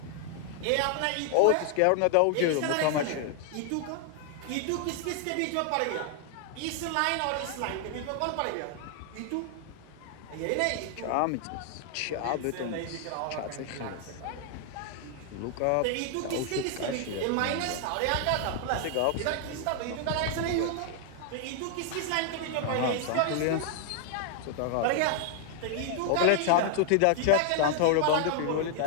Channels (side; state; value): both; different; correlation 0.00